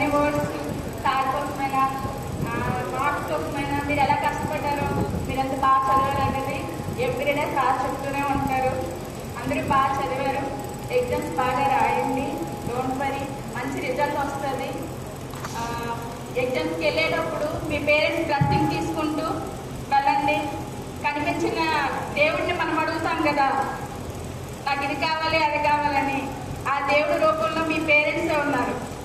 వర్డ్స్ సార్ కోసమైనా మార్క్స్ కోసమైనా మీరు ఎలా కష్టపడ్డారో మీరు ఎంత బాగా చదివారు అనేది ఎవ్రీడే సార్ చెప్తూనే ఉంటారు. అందరూ బాగా చదివారు, ఎగ్జామ్స్ బాగా రాయండి, డోంట్ వరీ, మంచి రిజల్ట్ వస్తుంది. ఎగ్జామ్స్కి వెళ్ళేటప్పుడు మీ పేరెంట్స్ బ్లెస్సింగ్ తీసుకుంటూ వెళ్ళండి. కనిపించిన దేవుడిని మనం అడుగుతాం కదా, నాకు ఇది కావాలి అది కావాలని. ఆ దేవుడి రూపంలో మీ పేరెంట్సే ఉన్నారు.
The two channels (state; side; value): identical; both; correlation 1.00